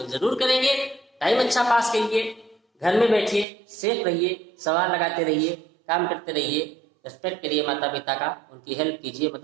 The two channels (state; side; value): drops out; left; at 3.5 s